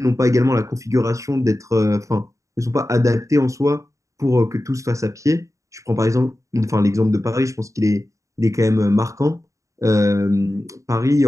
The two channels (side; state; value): left; late; 0.15 ms